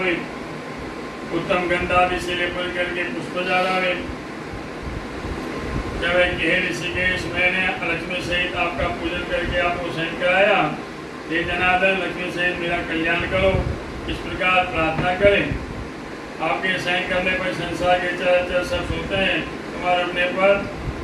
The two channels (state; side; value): identical; both; correlation 1.00